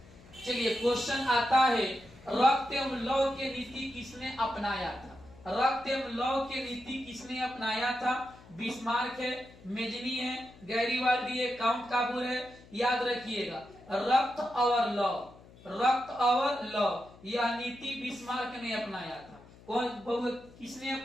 चलिए क्वेश्चन आता है, रक्त एवं लौह की नीति किसने अपनाया था? रक्त एवं लौह की नीति किसने अपनाया था? बिस्मार्क है, मेजनी है, गैरीवाल्डी है, काउंट काबूर है। याद रखिएगा, रक्त और लौह, रक्त और लौह, यह नीति बिस्मार्क ने अपनाया था। कौन, किसने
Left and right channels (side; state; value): left; noise; hum, 22 dB below the sound